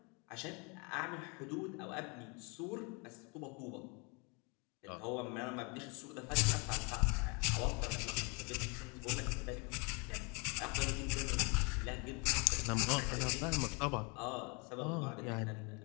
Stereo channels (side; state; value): right; quieter; 31.6 dB